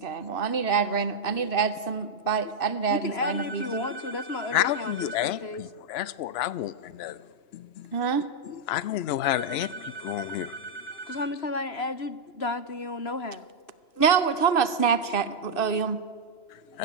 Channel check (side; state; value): right; late; 2.9 ms